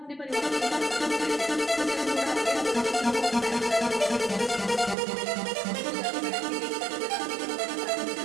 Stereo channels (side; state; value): left; drops out; at 5.0 s